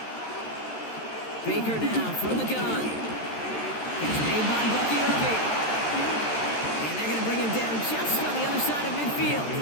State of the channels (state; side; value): late; right; 13 ms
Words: Baker now from the gun. It's made by Bucky Irving. And they're going to bring him down just on the other side of midfield.